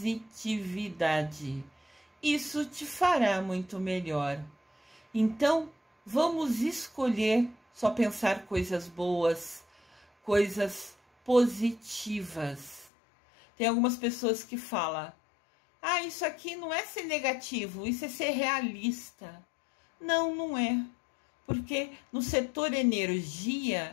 Isso te fará muito melhor. Então, vamos escolher só pensar coisas boas, coisas positivas. Tem algumas pessoas que falam: ah, isso aqui não é ser negativo, isso é ser realista. Não, não é. Porque no setor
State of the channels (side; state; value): right; drops out; at 12.9 s